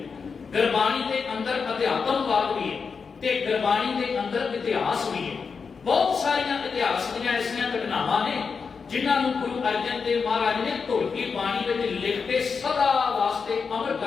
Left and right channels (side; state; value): right; quieter; 5.4 dB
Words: ਗੁਰਬਾਣੀ ਦੇ ਅੰਦਰ ਅਧਿਆਤਮਵਾਦ ਵੀ ਹੈ ਤੇ ਗੁਰਬਾਣੀ ਦੇ ਅੰਦਰ ਇਤਿਹਾਸ ਵੀ ਹੈ। ਬਹੁਤ ਸਾਰੀਆਂ ਇਤਿਹਾਸ ਦੀਆਂ ਐਸੀਆਂ ਘਟਨਾਵਾਂ ਨੇ ਜਿਨ੍ਹਾਂ ਨੂੰ ਗੁਰੂ ਅਰਜਨ ਦੇਵ ਮਹਾਰਾਜ ਨੇ ਢੋਲਕੀ ਬਾਣੀ ਵਿੱਚ ਲਿਖ ਕੇ ਸਦਾ ਵਾਸਤੇ ਅਮਰ